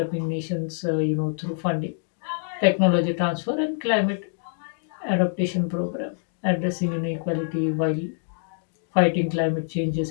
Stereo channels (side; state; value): right; silent; digital silence